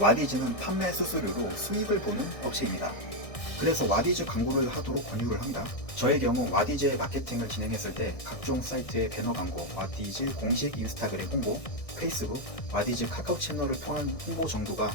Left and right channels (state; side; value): late; right; 1.6 ms